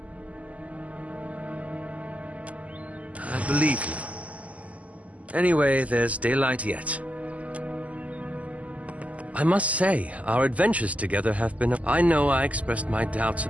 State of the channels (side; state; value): left; late; 0.071 ms